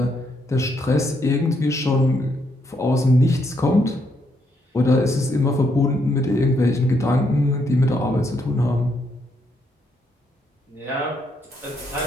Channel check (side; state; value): both; normal; correlation 0.75